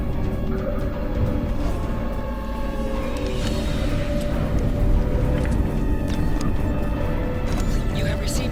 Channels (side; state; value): both; identical; correlation 1.00